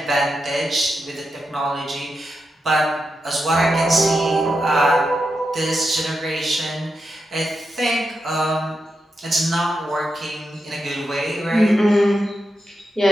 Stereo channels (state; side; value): normal; both; correlation 0.87